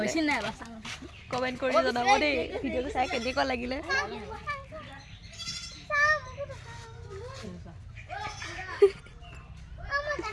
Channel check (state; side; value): identical; both; correlation 1.00